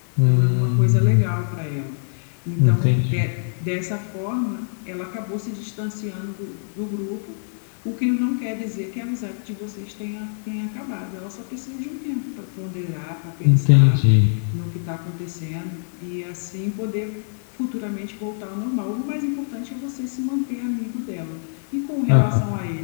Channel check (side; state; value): right; silent; digital silence